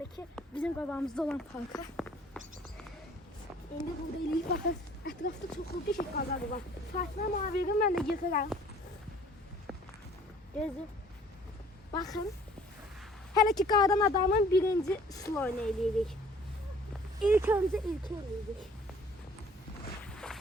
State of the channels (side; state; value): both; normal; correlation 0.54